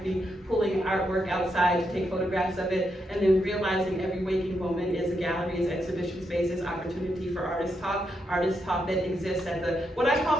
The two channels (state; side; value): normal; both; correlation 0.81